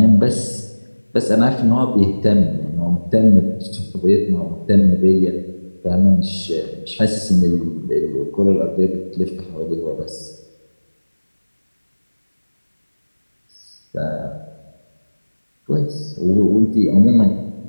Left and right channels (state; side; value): inverted; both; correlation -1.00